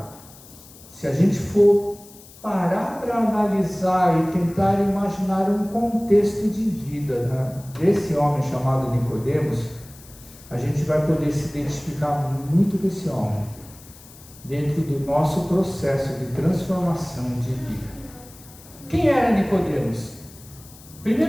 se a gente for parar para analisar e tentar imaginar um contexto de vida, né, desse homem chamado Nicodemos, a gente vai poder se identificar muito com esse homem, dentro do nosso processo de transformação de vida. Quem era Nicodemos?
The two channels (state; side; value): noise; left; hiss, 21 dB below the sound